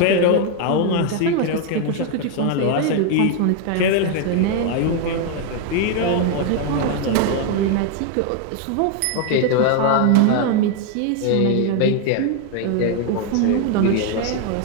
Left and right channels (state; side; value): different; both; correlation 0.01